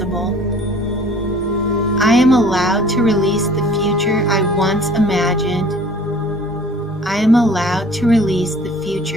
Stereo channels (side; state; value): both; normal; correlation 0.50